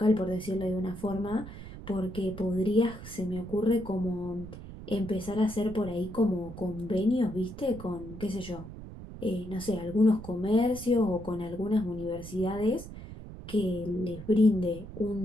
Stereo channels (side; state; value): right; noise; rumble, 13 dB below the sound